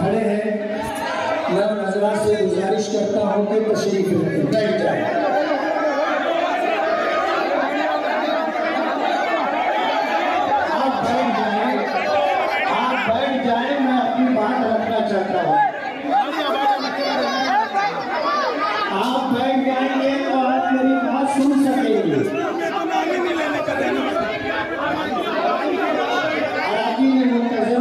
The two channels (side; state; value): both; identical; correlation 1.00